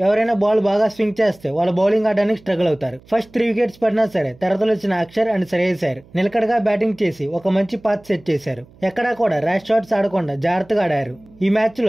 ఎవరైనా బాల్ బాగా స్వింగ్ చేస్తే వాళ్ళ బౌలింగ్ ఆడడానికి స్ట్రగుల్ అవుతారు. ఫస్ట్ 3 వికెట్స్ పడినా సరే తర్వాత వచ్చిన అక్షర్ అండ్ శ్రేయస్ అయ్యర్ నిలకడగా బ్యాటింగ్ చేసి ఒక మంచి పాత్ సెట్ చేశారు. ఎక్కడా కూడా ర్యాష్ షాట్స్ ఆడకుండా జాగ్రత్తగా ఆడారు. ఈ మ్యాచ్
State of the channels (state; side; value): noise; right; hum, 26 dB below the sound